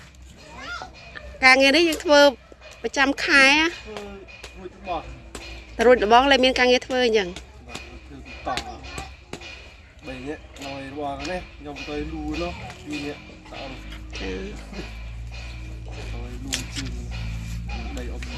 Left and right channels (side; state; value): both; identical; correlation 1.00